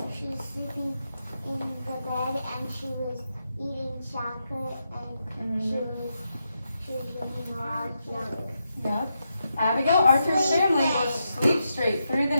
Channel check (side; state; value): both; inverted; correlation -0.85